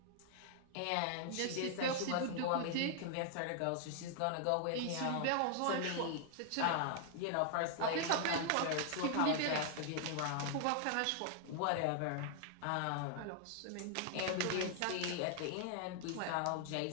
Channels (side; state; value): both; different; correlation 0.00